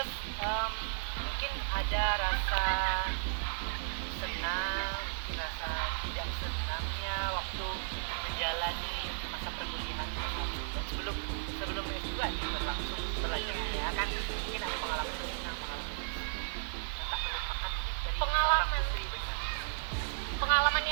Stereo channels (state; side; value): silent; left; digital silence